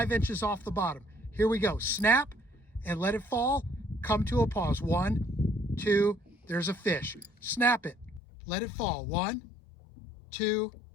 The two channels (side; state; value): right; drops out; at 8.2 s